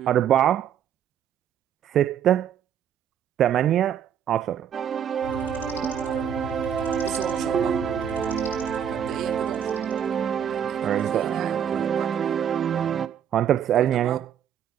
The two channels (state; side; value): quieter; left; 9.0 dB